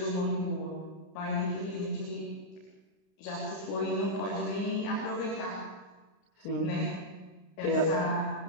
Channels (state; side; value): late; right; 32 ms